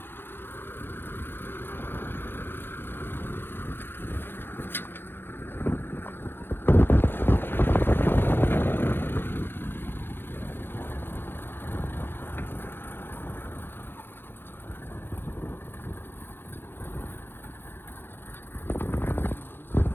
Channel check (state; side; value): late; right; 0.10 ms